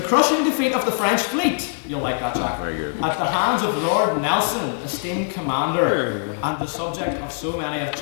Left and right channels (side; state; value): right; silent; 64 dB below the other